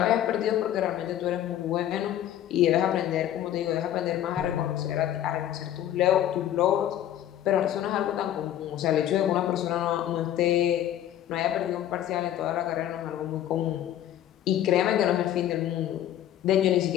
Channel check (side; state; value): right; quieter; 11.6 dB